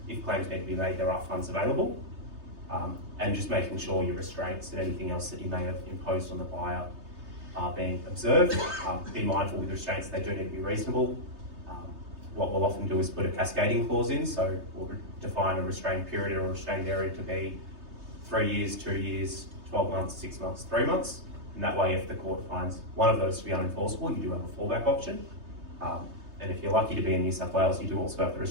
claims need to be made, there are funds available, and just making sure your restraints and anything else that you may have imposed on the buyer are being observed. Be mindful with restraints, they do need to be reasonable. What we'll often do is put a cascading clause in, so we'll define a restrained period or a restrained area to be 3 years, 2 years, 12 months, 6 months, 3 months. And that way, if the court finds one of those to be unenforceable, you do have a fallback option. And if you're lucky to be in New South Wales, you do also have the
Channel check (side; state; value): left; late; 3.3 ms